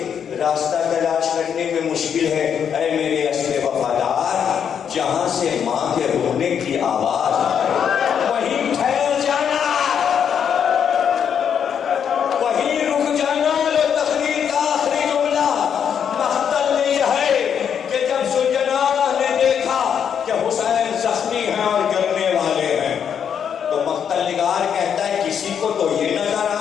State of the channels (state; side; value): quieter; right; 8.0 dB